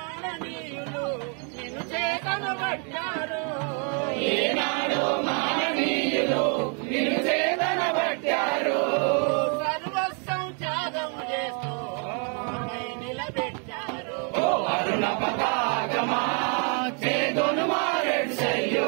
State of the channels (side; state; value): left; quieter; 39.5 dB